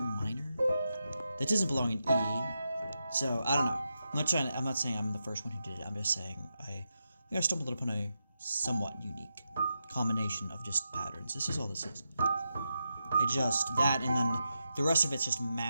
That doesn't belong in E. So, I don't know. I'm not saying I'm the first one who did it. I'm just saying I think I stumbled upon a somewhat unique combination of just patterns. This is all this is. That, and then the rest of it's just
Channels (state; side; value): inverted; both; correlation -0.87